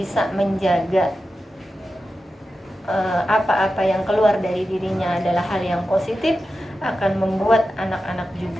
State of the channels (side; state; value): both; normal; correlation 0.92